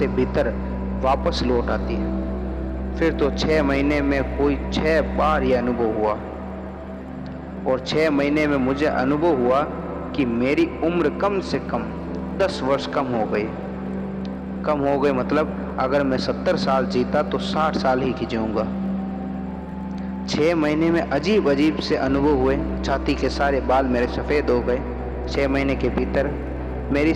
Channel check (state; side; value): identical; both; correlation 1.00